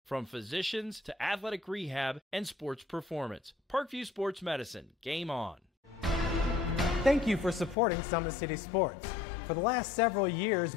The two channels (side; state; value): right; drops out; at 7.8 s